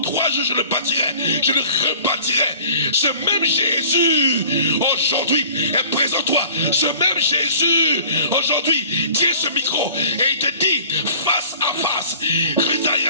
3 jours je le bâtirai, je le rebâtirai. Ce même Jésus aujourd'hui est présent toi. Ce même Jésus aujourd'hui tient ce micro et il te dit face à face,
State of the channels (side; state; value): both; inverted; correlation -0.48